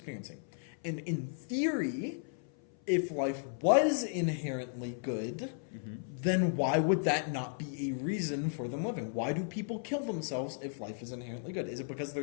And in theory, if life was inherently good, then why would that not be a reason for them living? Why do people kill themselves if life is inherently good? Is it because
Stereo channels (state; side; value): silent; right; 55 dB below the other